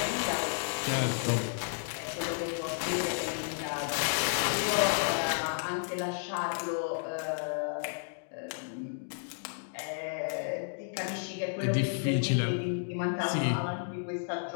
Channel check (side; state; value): right; silent; digital silence